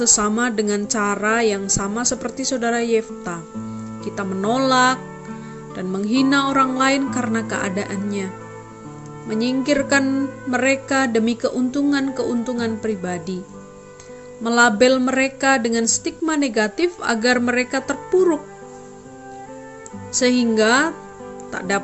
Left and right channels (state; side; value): identical; both; correlation 1.00